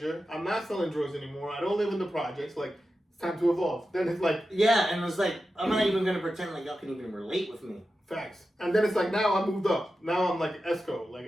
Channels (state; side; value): normal; both; correlation 0.92